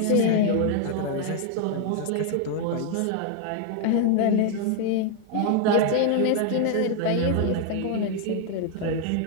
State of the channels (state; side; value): different; both; correlation 0.00